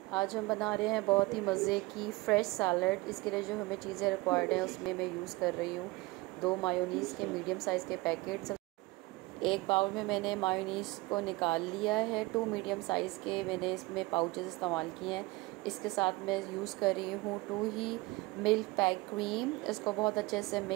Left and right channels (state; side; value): quieter; left; 22.5 dB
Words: आज हम बना रहे हैं बहुत ही मज़े की फ़्रेश सैलड। इसके लिए जो हमें चीज़ें रिक्वायर्ड हैं उसमें मैं यूज़ कर रही हूँ 2 मायोनीज़ के मीडियम साइज़ के पैकेट्स। एक बाउल में मैंने मायोनीज़ को निकाल लिया है। 2 मीडियम साइज़ के मैंने इसमें पाउचेस इस्तेमाल किए हैं। इसके साथ मैं यूज़ कर रही हूँ 2 ही मिल्क पैक क्रीम। इसको बहुत अच्छे से